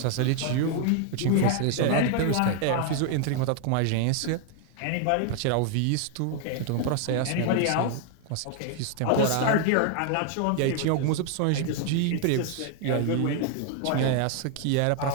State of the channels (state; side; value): different; both; correlation 0.00